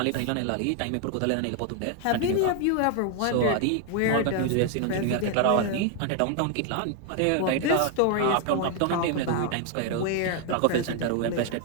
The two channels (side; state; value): both; different; correlation 0.01